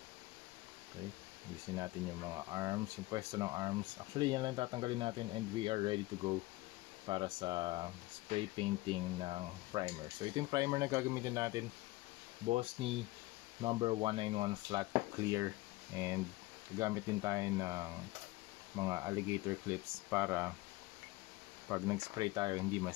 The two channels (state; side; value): quieter; right; 20.1 dB